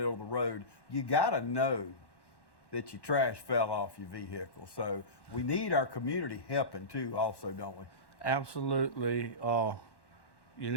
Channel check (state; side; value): late; right; 1.1 ms